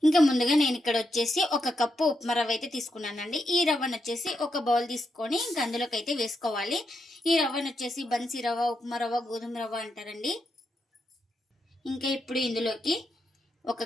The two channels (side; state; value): both; normal; correlation 0.83